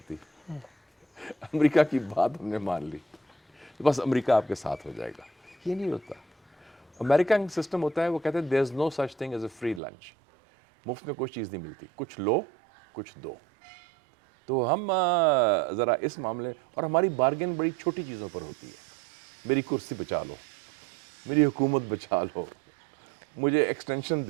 دی، امریکہ کی بات ہم نے مان لی، بس امریکہ آپ کے ساتھ ہو جائے گا، یہ نہیں ہوتا۔ امریکن سسٹم ہوتا ہے، وہ کہتے ہیں there is no such thing as a free lunch, مفت میں کوئی چیز نہیں ملتی، کچھ لو کچھ دو۔ تو ہم ذرا اس معاملے، اور ہماری بارگین بڑی چھوٹی چیزوں پر ہوتی ہے، میری کرسی بچا لو، میری حکومت بچا لو، مجھے ایکسٹینشن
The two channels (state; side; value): drops out; left; at 9.8 s